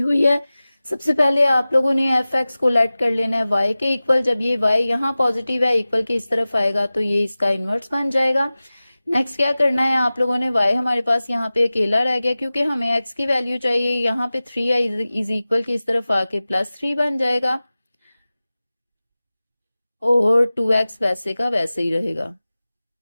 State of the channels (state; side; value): inverted; both; correlation -0.97